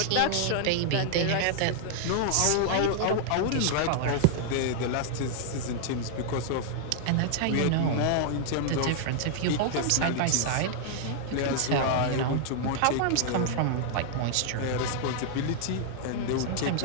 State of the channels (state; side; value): different; both; correlation -0.01